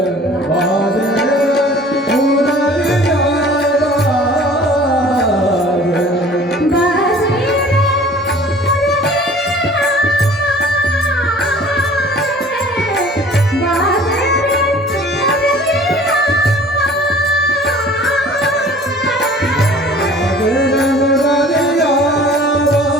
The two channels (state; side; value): normal; both; correlation 0.48